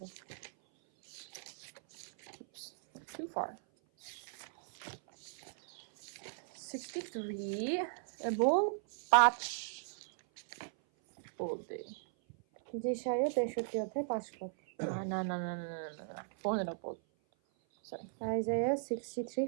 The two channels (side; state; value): left; silent; 53 dB below the other